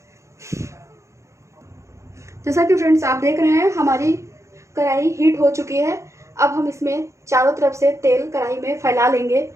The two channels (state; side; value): late; left; 0.14 ms